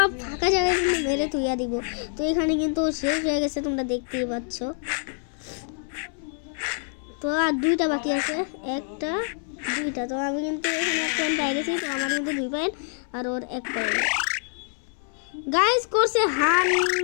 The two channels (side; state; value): right; silent; 61 dB below the other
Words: ফাঁকা জায়গায় কিন্তু মেরে তুইয়া দিব। তো এখানে কিন্তু শেষ হয়ে গেছে, তোমরা দেখতেই পাচ্ছ। তো আর 2টা বাকি আছে, 1টা 2টা। তো আমি কিন্তু এখানে 1 পয়েন্ট পেয়ে গেছি। তো আমার কিন্তু 2 পয়েন্ট আর ওর 1 পয়েন্ট। গাইস করছে